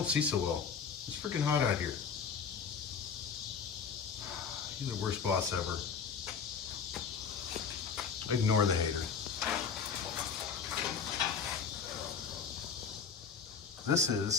see so well. It's freaking hot out here. You're the worst boss ever. Ignore the hater. This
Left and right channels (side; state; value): right; quieter; 6.3 dB